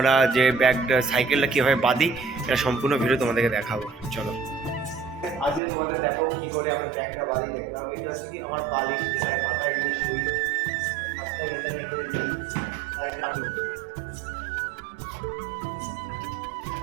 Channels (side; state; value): left; drops out; at 5.6 s